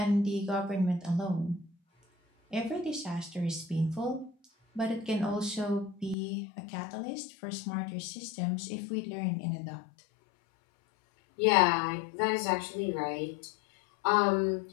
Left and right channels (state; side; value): drops out; right; at 6.2 s